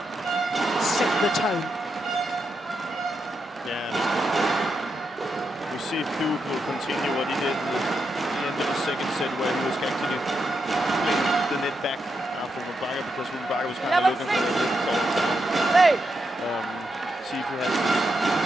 Set the tone. See if Duke will continue what he did at the end of the second set, where he was actually playing the net back after Rumbaka, because Rumbaka was kind of looking for it. See if he has the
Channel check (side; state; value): both; normal; correlation 0.84